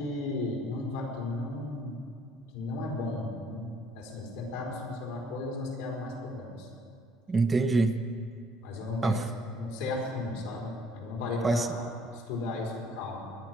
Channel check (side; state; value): both; normal; correlation 0.62